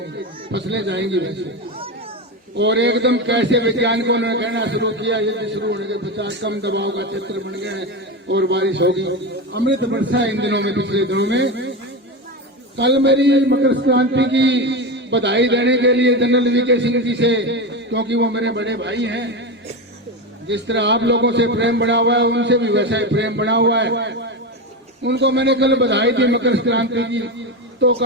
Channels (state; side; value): normal; both; correlation 0.18